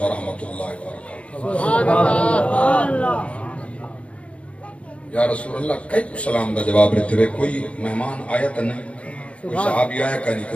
ورحمۃ اللہ وبرکاتہ یا رسول اللہ کئی کو سلام دا جواب رہتے ہوئے کوئی مہمان آیا تا نہیں کوئی صحابی آیا کا نہیں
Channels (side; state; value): right; late; 0.063 ms